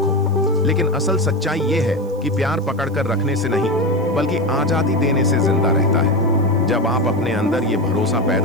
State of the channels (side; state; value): right; noise; hiss, 29 dB below the sound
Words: लेकिन असल सच्चाई ये है कि प्यार पकड़कर रखने से नहीं बल्कि आजादी देने से जिंदा रहता है। जब आप अपने अंदर ये भरोसा